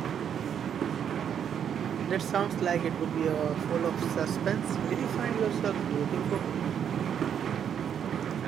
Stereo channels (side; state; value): left; quieter; 8.5 dB